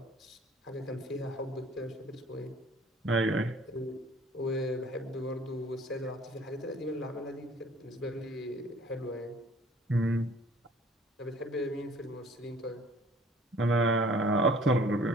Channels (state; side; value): normal; both; correlation 0.53